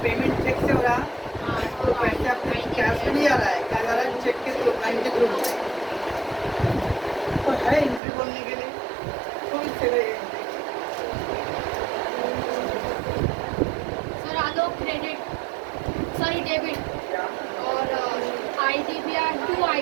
पेमेंट चेक से हो रहा, तो पैसे अपने कैश में नहीं आ रहा है, क्या जा रहा है चेक के थ्रू, बैंक के थ्रू, तो है एंट्री बोलने के लिए, तो इससे गई एंट्री। सर आलोक क्रेडिट, सॉरी डेबिट, क्या और IDPR 2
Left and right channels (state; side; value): drops out; left; at 8.0 s